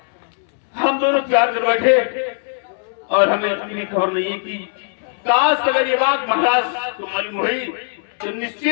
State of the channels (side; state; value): right; silent; 66 dB below the other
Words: हम दोनों प्यार कर बैठे और हमें इतनी खबर नहीं कि काश अगर ये बात महाराज को मालूम हुई तो